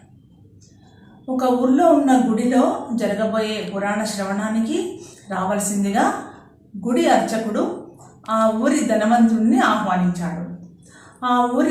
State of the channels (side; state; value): both; identical; correlation 1.00